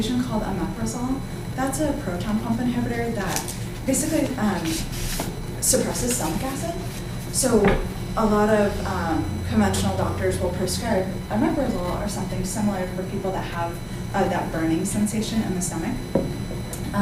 called omeprazole. That's a proton pump inhibitor that basically suppresses stomach acid. So a lot of conventional doctors will prescribe omeprazole or something similar for people that have that burning sensation in the stomach.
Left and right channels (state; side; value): identical; both; correlation 1.00